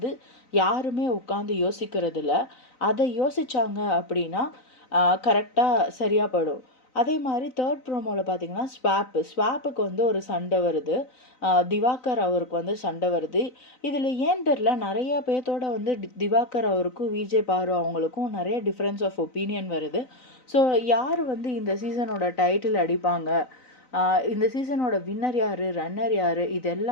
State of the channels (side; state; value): right; late; 3.9 ms